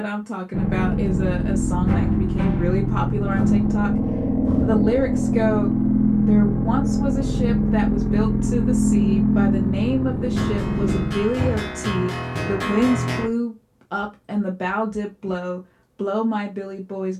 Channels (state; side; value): identical; both; correlation 1.00